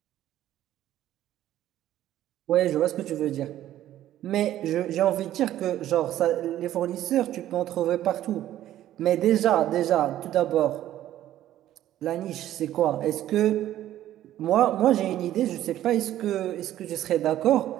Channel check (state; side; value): quieter; left; 12.9 dB